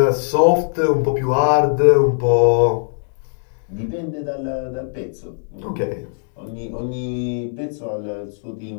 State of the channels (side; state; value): right; silent; digital silence